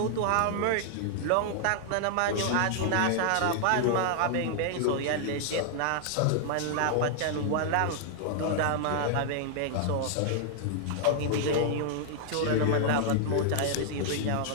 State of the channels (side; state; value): both; different; correlation 0.00